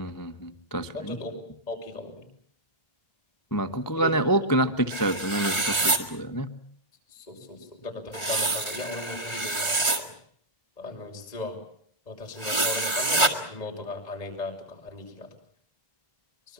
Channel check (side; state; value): right; late; 1.4 ms